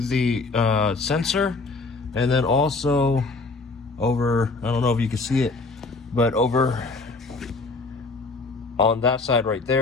sensor, and then also over, I don't know if you can see it, but over on that side right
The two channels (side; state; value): right; quieter; 3.7 dB